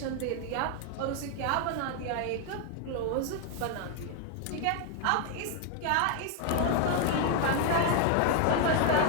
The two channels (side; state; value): both; different; correlation 0.00